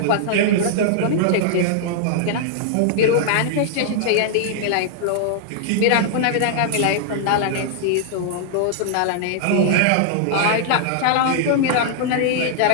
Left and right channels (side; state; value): both; different; correlation -0.01